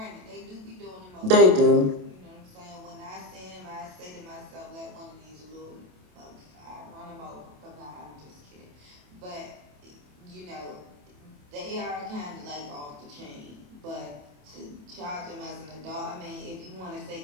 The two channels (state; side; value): late; left; 27 ms